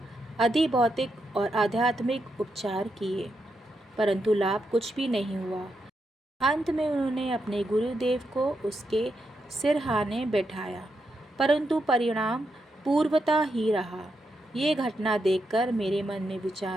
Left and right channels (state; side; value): normal; both; correlation 0.83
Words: अधिभौतिक और आध्यात्मिक उपचार किए, परंतु लाभ कुछ भी नहीं हुआ। अंत में उन्होंने अपने गुरुदेव को उसके सिरहाने बैठाया, परंतु परिणाम पूर्वता ही रहा। ये घटना देखकर मेरे मन में